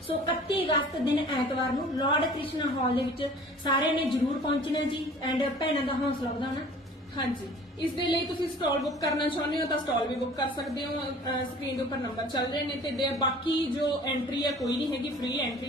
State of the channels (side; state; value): both; normal; correlation 0.47